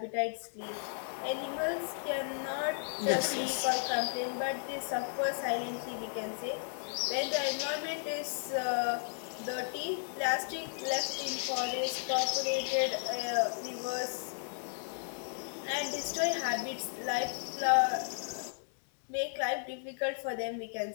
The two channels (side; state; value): right; silent; digital silence